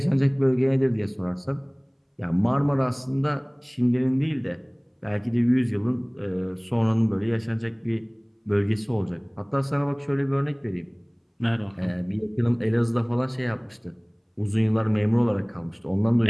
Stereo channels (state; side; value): identical; both; correlation 1.00